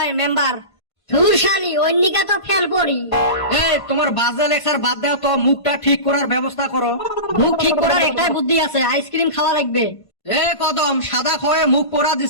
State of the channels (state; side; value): late; right; 1.5 ms